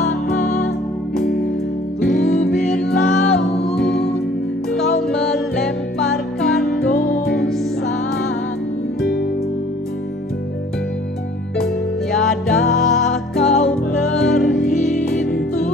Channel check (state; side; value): normal; both; correlation 0.54